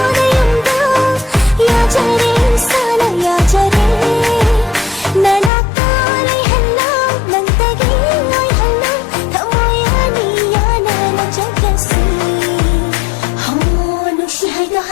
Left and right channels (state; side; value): drops out; right; at 5.5 s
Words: नयंदा याजरे साना याजरे नना ताले हल्ला नंतगी नोय हल्ला थमोया नियाना न जगसी हो नुशी हाइदो